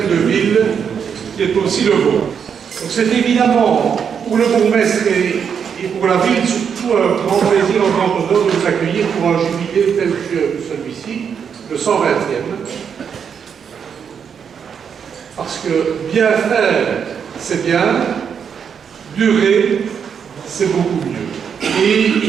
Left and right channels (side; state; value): left; quieter; 7.2 dB